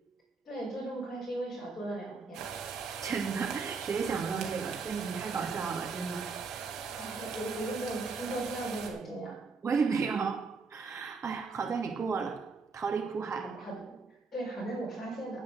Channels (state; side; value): quieter; left; 4.5 dB